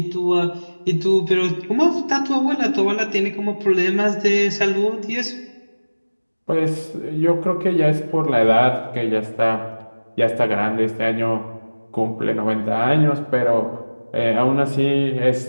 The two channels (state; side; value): inverted; both; correlation -1.00